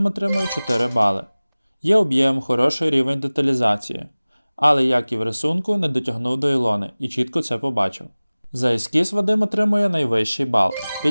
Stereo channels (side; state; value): both; inverted; correlation -0.99